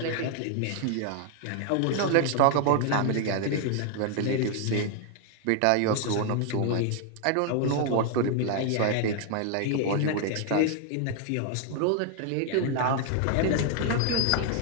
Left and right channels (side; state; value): both; different; correlation 0.00